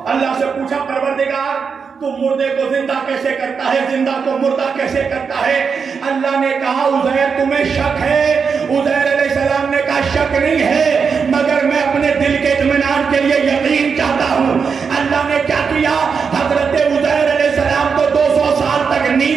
اللہ سے پوچھا پروردگار تو مردے کو زندہ کیسے کرتا ہے، زندہ کو مردہ کیسے کرتا ہے؟ اللہ نے کہا عزیر تمہیں شک ہے. عزیر علیہ السلام نے کہا شک نہیں ہے، مگر میں اپنے دل کے اطمینان کے لیے یقین چاہتا ہوں. اللہ نے کیا کیا؟ حضرت عزیر علیہ السلام کو 200 سال تک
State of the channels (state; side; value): quieter; left; 5.8 dB